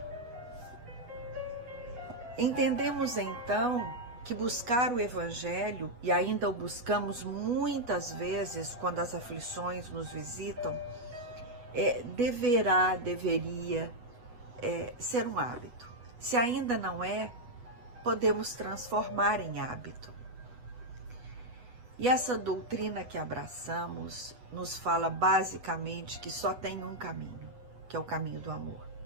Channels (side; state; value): left; late; 8.2 ms